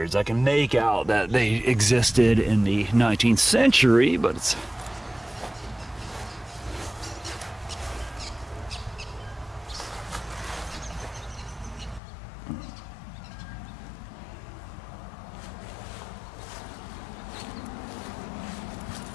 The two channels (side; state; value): right; drops out; at 12.0 s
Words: I can make out that they existed in the 19th century, but it's...